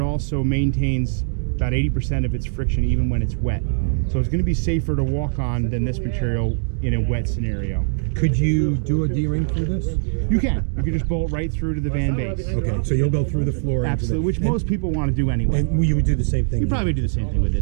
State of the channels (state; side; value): silent; left; digital silence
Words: also maintains about 80% of its friction even when it's wet. So it's going to be safer to walk on than this material in a wet scenario. Could you do a D-ring through this? You can. You can just bolt right through to the van base. Okay, so you'll go through the floor. Absolutely, which most people want to do anyway. And you would do the same thing? You probably do the same thing with